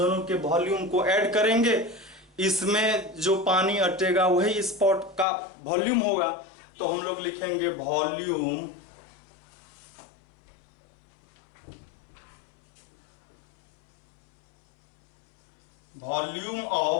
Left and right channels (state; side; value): drops out; right; at 5.2 s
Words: के वॉल्यूम को ऐड करेंगे, इसमें जो पानी अटेगा वही स्पॉट का वॉल्यूम होगा। तो हम लोग लिखेंगे वॉल्यूम